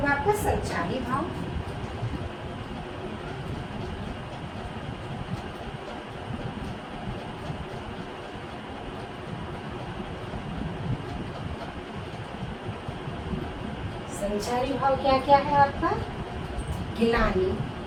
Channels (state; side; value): identical; both; correlation 1.00